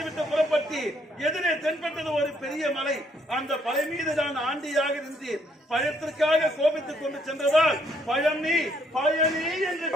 விட்டு புறப்பட்டு எதிரே தென்பட்டது ஒரு பெரிய மலை. அந்த மலை மீது தான் ஆண்டியாக நின்று பயத்திற்காக கோபித்துக் கொண்டு சென்றதால் பயணி பயணி என்று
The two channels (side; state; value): both; normal; correlation 0.69